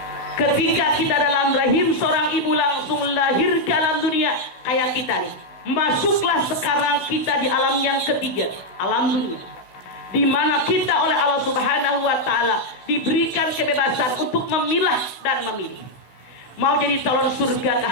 ketika kita dalam rahim seorang ibu langsung lahir ke alam dunia kayak kita nih. Masuklah sekarang kita di alam yang ketiga, alam dunia, di mana kita oleh Allah Subhanahu wa Ta'ala diberikan kebebasan untuk memilah dan memilih. Mau jadi calon surgakah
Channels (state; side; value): late; right; 16 ms